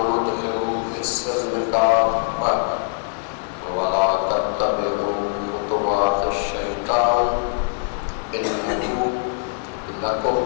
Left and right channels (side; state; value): right; silent; 64 dB below the other